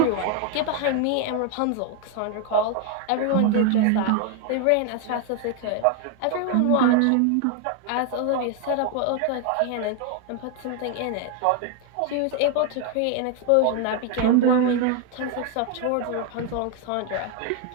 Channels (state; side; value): different; both; correlation 0.01